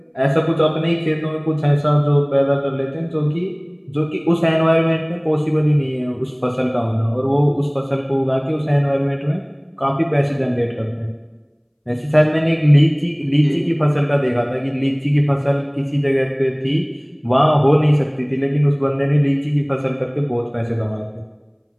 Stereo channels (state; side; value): identical; both; correlation 1.00